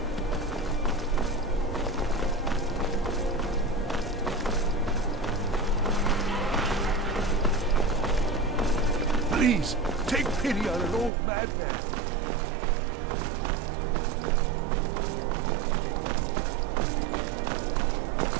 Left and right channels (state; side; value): drops out; left; at 11.1 s